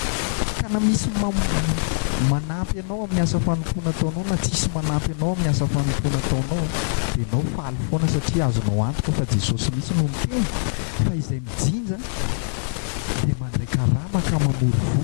Ka na misy manampy anao amin'ny asa fanompoana ataonao na tsisy manampy anao amin'ny asa fanompoana ataonao dia ianao faly foana satria azonao antoka fa Jesosy misy no miteny fa izay mijinja dia mandray karama ka mamory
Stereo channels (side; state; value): right; silent; 63 dB below the other